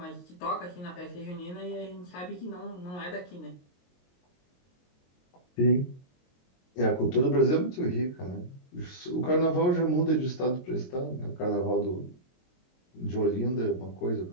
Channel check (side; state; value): right; late; 22 ms